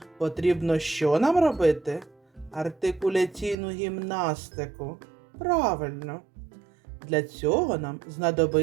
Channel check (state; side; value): drops out; left; at 3.6 s